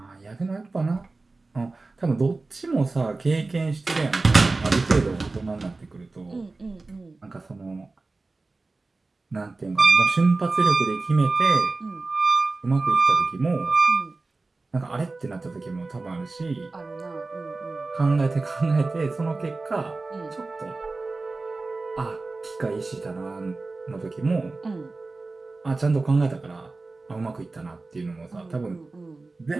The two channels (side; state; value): left; quieter; 3.5 dB